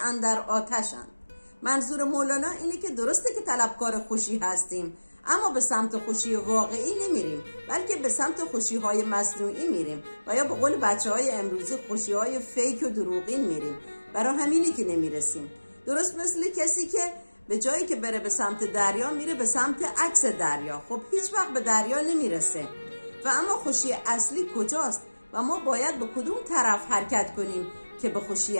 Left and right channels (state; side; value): inverted; both; correlation -1.00